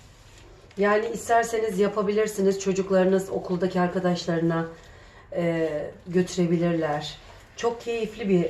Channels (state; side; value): identical; both; correlation 1.00